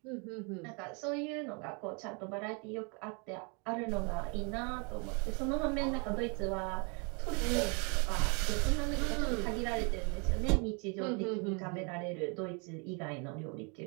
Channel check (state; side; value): quieter; left; 34.6 dB